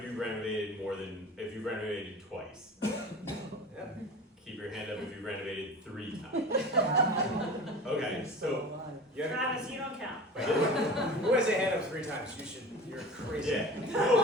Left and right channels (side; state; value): both; normal; correlation 0.36